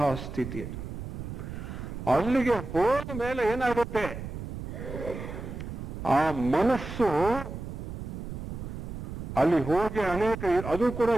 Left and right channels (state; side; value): noise; right; rumble, 8 dB below the sound